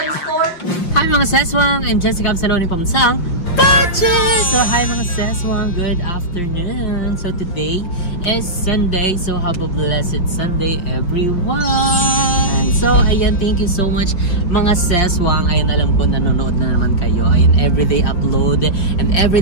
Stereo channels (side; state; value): right; late; 5.5 ms